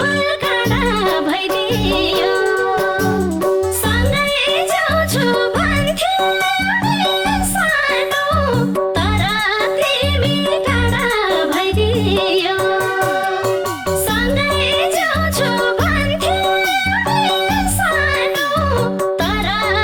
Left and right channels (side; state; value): both; identical; correlation 1.00